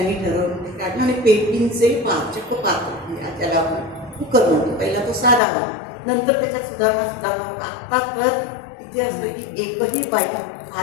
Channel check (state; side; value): drops out; right; at 5.4 s